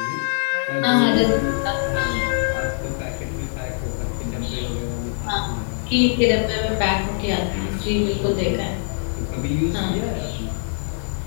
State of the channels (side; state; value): right; silent; 56 dB below the other